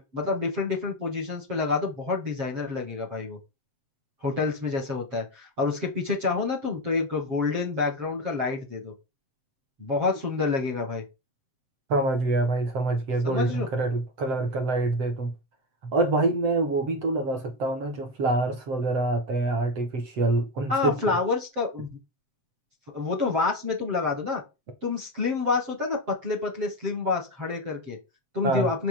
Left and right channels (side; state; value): left; late; 7.5 ms